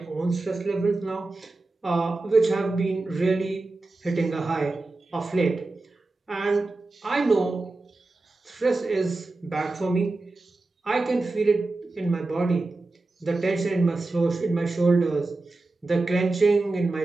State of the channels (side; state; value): left; quieter; 3.2 dB